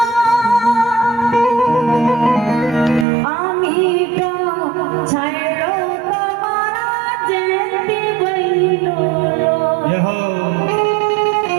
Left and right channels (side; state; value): left; drops out; at 3.1 s